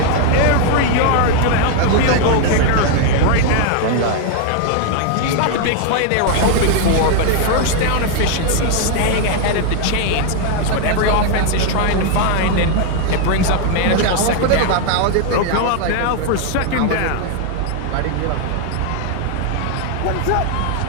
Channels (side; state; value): both; different; correlation 0.00